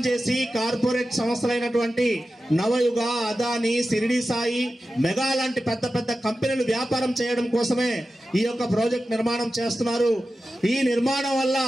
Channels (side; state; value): both; normal; correlation 0.93